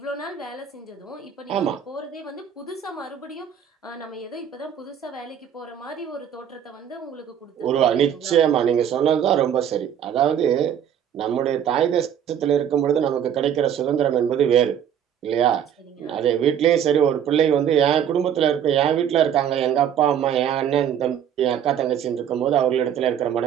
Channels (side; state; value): left; quieter; 9.1 dB